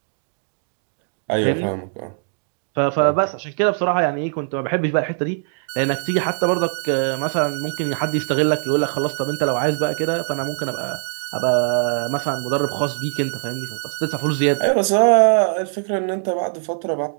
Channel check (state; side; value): silent; left; digital silence